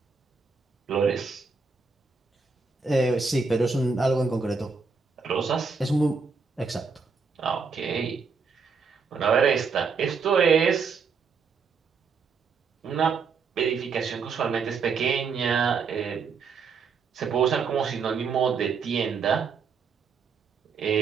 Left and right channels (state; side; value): quieter; left; 5.2 dB